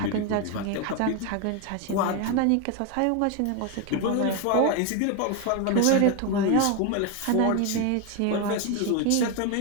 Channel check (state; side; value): different; both; correlation 0.01